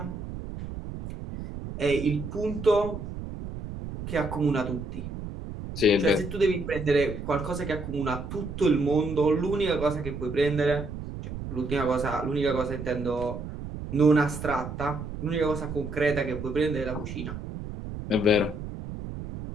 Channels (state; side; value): noise; right; rumble, 8 dB below the sound